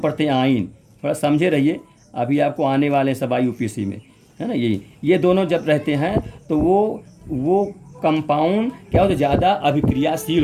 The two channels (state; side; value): identical; both; correlation 1.00